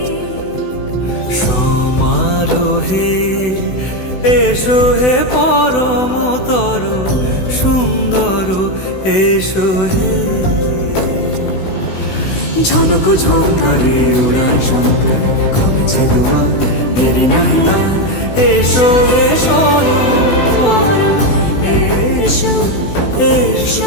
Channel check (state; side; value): late; right; 16 ms